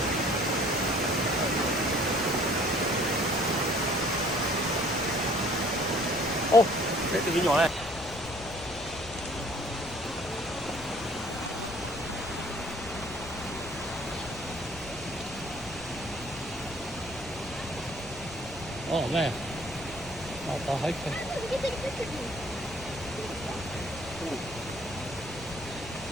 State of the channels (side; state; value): left; noise; rumble, 14 dB below the sound